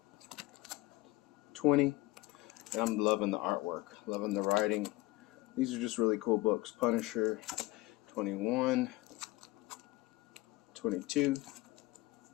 20, and I'm loving the artwork, loving the writing. These are just really cool books. Punisher 21, 22,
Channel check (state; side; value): quieter; right; 19.0 dB